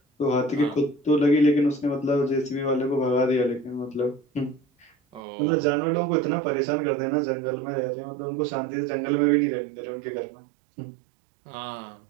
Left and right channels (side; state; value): left; drops out; at 5.2 s